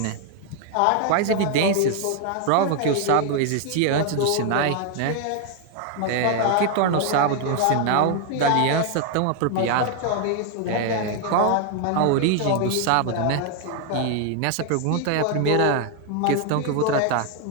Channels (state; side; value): different; both; correlation 0.01